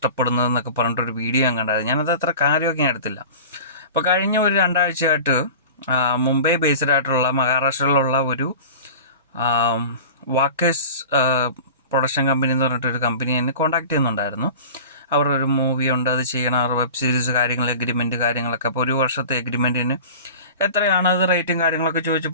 പറഞ്ഞിട്ടൊരു വീഡിയോ ഞാൻ കണ്ടായിരുന്നു. ഞാനത് അത്ര കാര്യമൊക്കെ ഞാൻ എടുത്തില്ല. അപ്പോൾ കഴിഞ്ഞ ഒരു 2 ആഴ്ചയായിട്ട് മുംബൈ ബേസ്ഡ് ആയിട്ടുള്ള മഹാരാഷ്ട്രയിലുള്ള ഒരു വാക്കേഴ്സ് പ്രൊഡക്ഷൻ കമ്പനി എന്ന് പറഞ്ഞിട്ടൊരു കമ്പനി എന്നെ കോൺടാക്ട് ചെയ്യുന്നുണ്ടായിരുന്നു. അവരുടെ ഒരു മൂവി ഉണ്ട്, അത് ചെയ്യണം, അവർ വെബ് സീരീസ് കാര്യങ്ങൾ, എഗ്രിമെൻറ്റ് കാര്യങ്ങളൊക്കെ. അപ്പോൾ 1 വർഷത്തെ എഗ്രിമെൻറ്റിന് എത്രയാണ് അത് റേറ്റും കാര്യങ്ങളൊക്കെ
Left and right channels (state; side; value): inverted; both; correlation -0.37